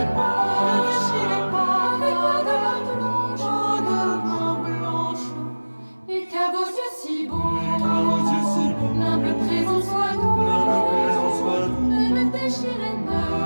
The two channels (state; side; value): inverted; both; correlation -1.00